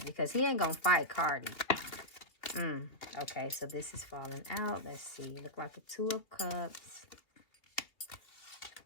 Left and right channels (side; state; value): right; late; 3.0 ms